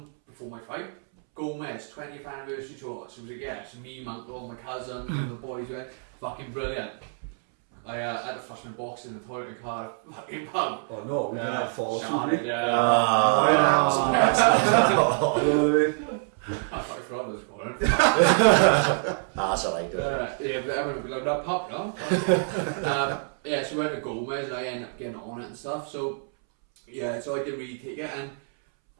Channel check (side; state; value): left; silent; 61 dB below the other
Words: before my fight? Gomez 20th anniversary tour. So it was like, yeah, so me, my uncle, my cousin, one of the boys went, fucking brilliant. I had to flush my box in the toilet in Cardiff fucking pub. Oh no, we didn't have fall through. No, it happens to the best of us. You know what I mean? I fucking forgot I was calling. That's alright. Yeah, but I'm not going to that pub now. Yeah, so we went to Gomez and I ended up getting on it and stuff. So yeah, so I didn't really take it, and